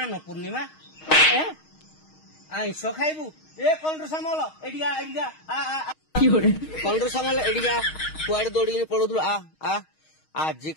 ପୂର୍ଣ୍ଣିମା ଆଇଁଷ ଖାଇବୁ ଏ କଣ ସାମଲ ଏଠିକା ଏଠିକା କଣ ସାମଲ ଏଠିକା କୁଆଡେ ଦୌଡ଼ିକିନି ପଳଉଥିଲୁ ଆ ଆଜି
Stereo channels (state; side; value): late; right; 6.4 ms